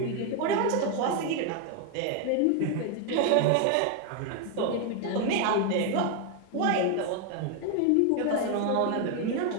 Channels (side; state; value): both; different; correlation 0.01